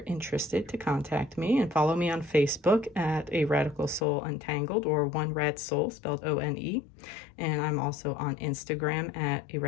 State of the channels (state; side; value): drops out; right; at 4.0 s